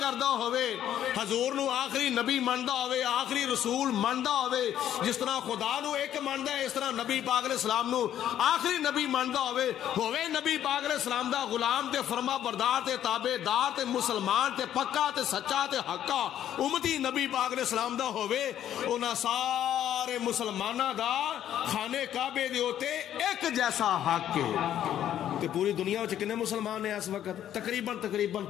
ہووے, حضور نو آخری نبی مندا ہووے, آخری رسول مندا ہووے, جس طرح خدا نو ایک مندا ہے اس طرح نبی پاک علیہ السلام نو آخری نبی مندا ہووے نبی پاک علیہ السلام دا غلام تے فرما بردار تے تابع دار تے مسلمان تے پکا تے سچا تے حقا امتی نبی پاک علیہ السلام دا ہووے, انہاں سارے مسلمانہ دا خانے کعبے دے ہوتے ایک جیسا حق ہے. تے پوری دنیا وچ کنے مسلمان ہیں اس وقت؟ تقریباً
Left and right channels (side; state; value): right; quieter; 11.0 dB